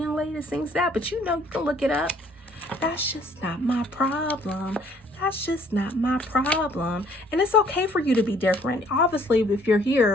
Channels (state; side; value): normal; both; correlation 0.61